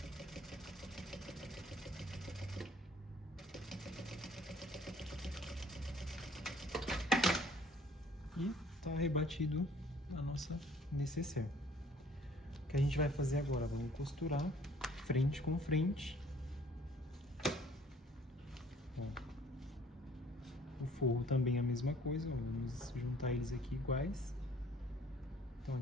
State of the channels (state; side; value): normal; both; correlation 0.56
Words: E tá rebatido a nossa nécessaire. O que a gente vai fazer agora? Vamos costurar frente com frente. O forro também é a mesma coisa, vamos juntar eles aqui iguais. Então